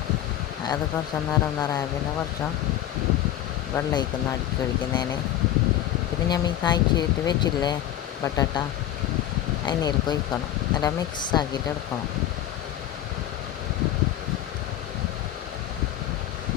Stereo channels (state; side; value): quieter; right; 12.1 dB